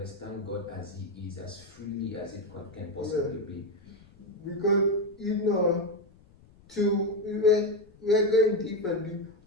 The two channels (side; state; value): left; noise; rumble, 26 dB below the sound